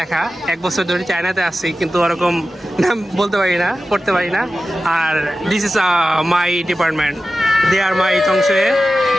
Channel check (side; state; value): both; normal; correlation 0.94